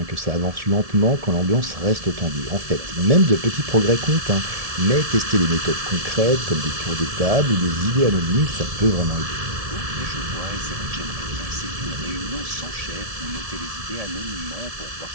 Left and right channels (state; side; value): late; left; 1.7 ms